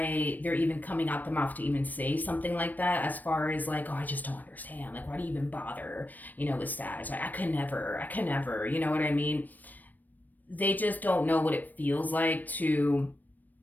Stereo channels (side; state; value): right; late; 0.086 ms